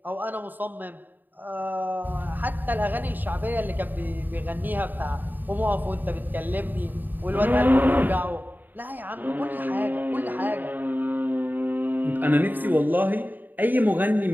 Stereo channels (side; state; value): left; late; 0.088 ms